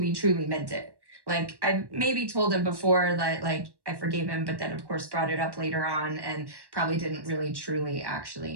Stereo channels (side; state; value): left; late; 1.1 ms